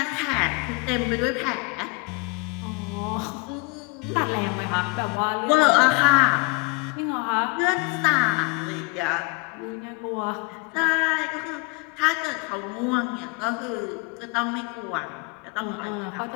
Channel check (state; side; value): quieter; right; 29.7 dB